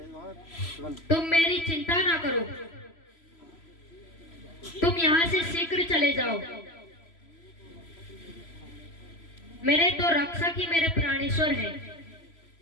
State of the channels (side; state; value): right; late; 3.0 ms